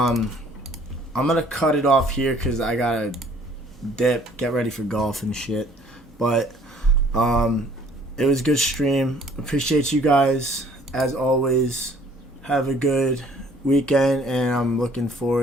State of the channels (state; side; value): normal; both; correlation 0.57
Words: gonna cut it off here because I gotta dip, get ready for golf and shit. But it was a good stream. Appreciate you guys as always. Have a good weekend, and I'm looking